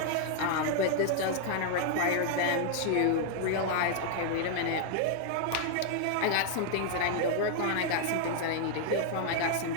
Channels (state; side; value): different; both; correlation 0.00